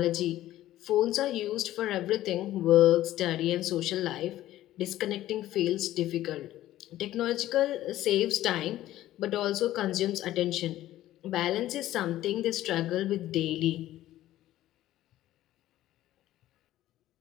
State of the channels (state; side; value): quieter; right; 14.2 dB